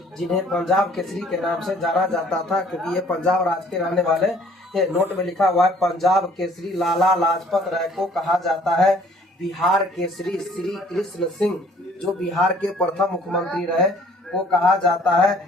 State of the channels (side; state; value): both; normal; correlation 0.57